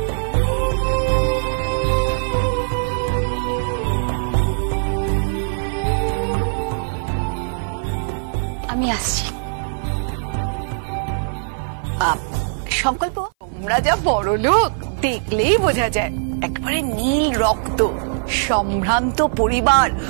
আমি আসছি। সংকল্প, তোমরা যা বড় লোক দেখলেই বোঝা যায়। একবারে নীল রক্ত, সম্ভ্রান্ত পরিবার,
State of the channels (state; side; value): silent; left; 60 dB below the other